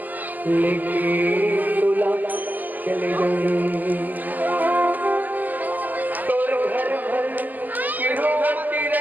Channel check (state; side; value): late; left; 0.083 ms